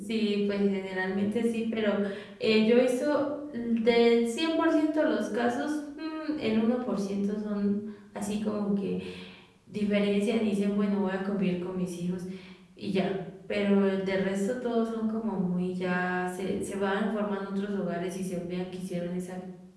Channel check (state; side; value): identical; both; correlation 1.00